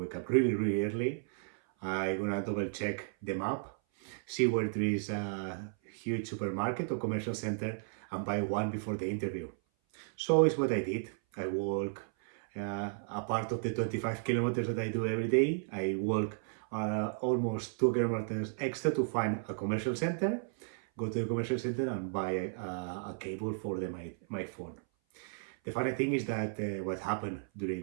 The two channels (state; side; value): silent; left; 55 dB below the other